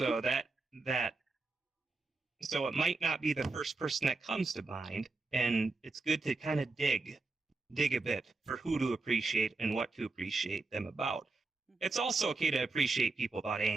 so it might not be the first person that comes to mind, and it's good to kind of dig a bit for who to appreciate and what to appreciate them about. It's also okay to appreciate people about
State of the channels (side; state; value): left; quieter; 3.7 dB